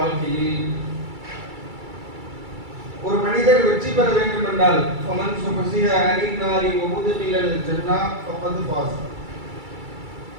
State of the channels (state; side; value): late; left; 2.3 ms